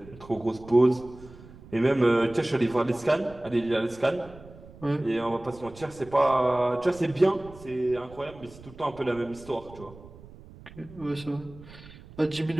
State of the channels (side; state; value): right; noise; rumble, 19 dB below the sound